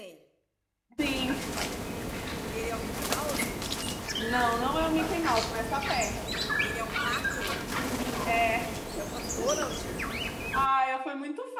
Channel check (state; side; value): identical; both; correlation 1.00